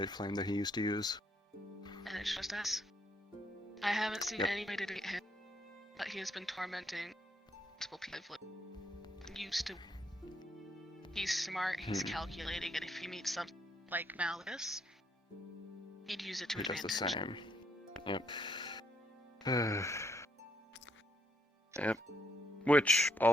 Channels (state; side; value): normal; both; correlation 0.72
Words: flame that he used to use. And it's just us. I haven't seen anybody to get him, but he has been tormenting multiple people. Used to. He's smart, he's calculating, and if he meets something like Malleus, he'd use it to advantage. Does the same. Yep. Yep. Which,